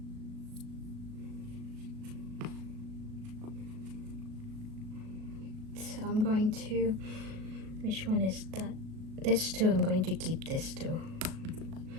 So I'm going to, which one is that? This 2, I'm going to keep this 2.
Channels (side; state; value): left; late; 37 ms